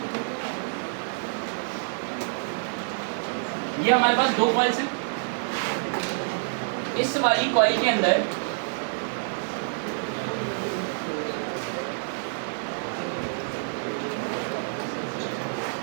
ये हमारे पास दो कॉइल्स हैं। इस वाली कॉइल के अंदर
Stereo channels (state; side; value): silent; left; digital silence